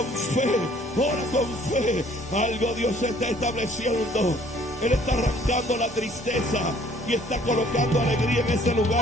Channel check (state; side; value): normal; both; correlation 0.58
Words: fe, ora con fe. Algo Dios está estableciendo. Él está arrancando la tristeza y está colocando alegría en ese